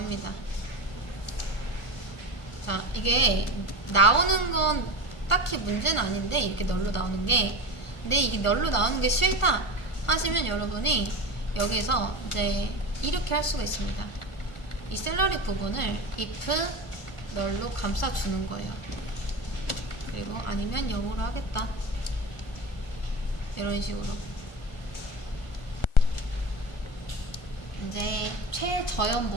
자, 이게 나오는 건 딱히 문제는 아닌데 이렇게 널로 나오는 게, 근데 이게 널로 나오는 게 싫다 하시면 여러분이 여기서 이제 이렇게 할 수가 있습니다. 이 샐러리 부분을 if 널로 감싸주는 거예요. 그리고 아니면 0으로 하겠다. 이런 식으로. 이제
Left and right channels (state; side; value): late; right; 1.4 ms